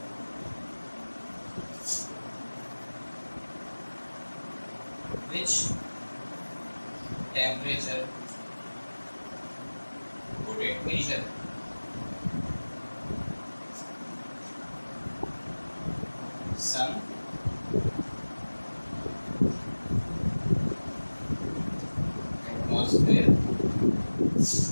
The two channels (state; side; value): inverted; both; correlation -1.00